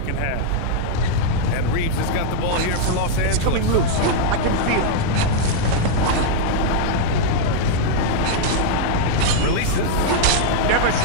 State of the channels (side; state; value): both; different; correlation -0.01